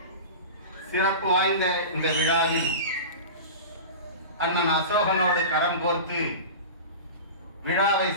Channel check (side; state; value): both; inverted; correlation -0.31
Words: சிறப்பு வாய்ந்த இந்த விழாவில் அண்ணன் அசோகனோடு கரம் கோர்த்து விழாவை